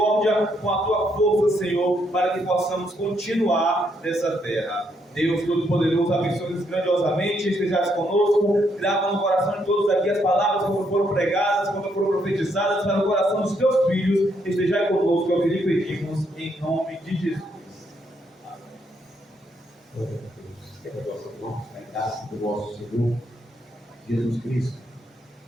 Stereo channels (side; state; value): both; normal; correlation 0.75